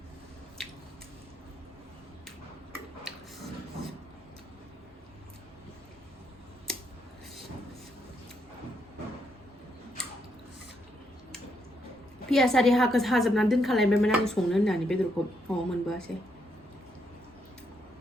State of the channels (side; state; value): both; normal; correlation 0.77